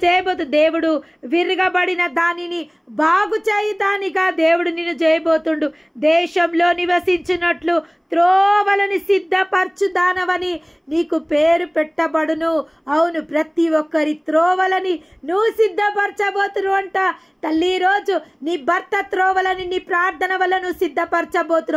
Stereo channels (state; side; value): identical; both; correlation 1.00